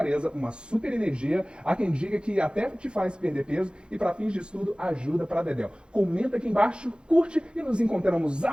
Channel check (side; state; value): left; late; 0.053 ms